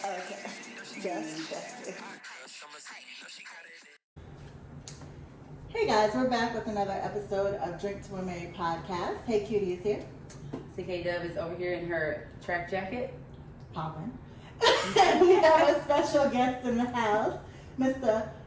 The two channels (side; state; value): both; identical; correlation 1.00